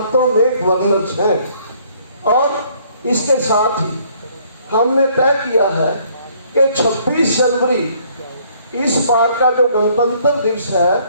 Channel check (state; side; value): inverted; both; correlation -0.62